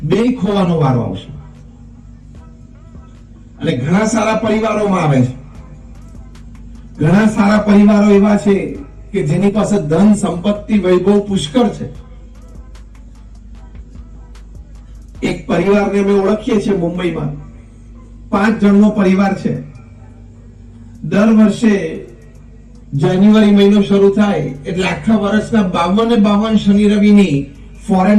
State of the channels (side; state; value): both; identical; correlation 1.00